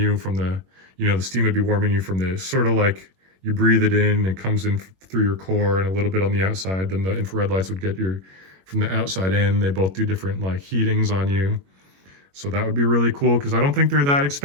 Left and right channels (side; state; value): left; late; 21 ms